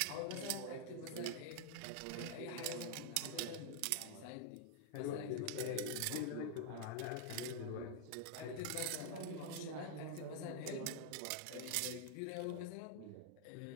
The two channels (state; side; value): different; both; correlation 0.00